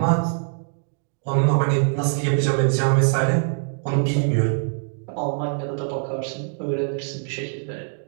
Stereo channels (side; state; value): left; silent; 63 dB below the other